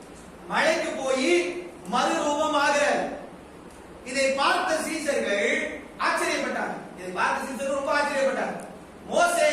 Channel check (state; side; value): identical; both; correlation 1.00